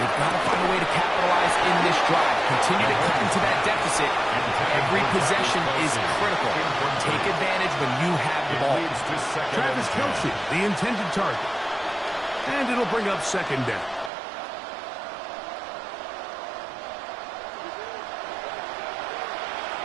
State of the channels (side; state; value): left; drops out; at 14.1 s